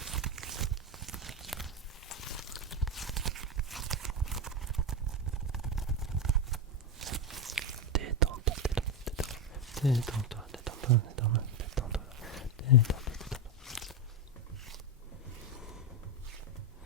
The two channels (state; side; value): normal; both; correlation 0.10